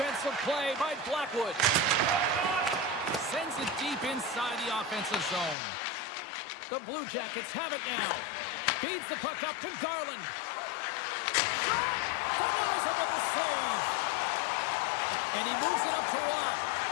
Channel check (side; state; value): right; drops out; at 5.6 s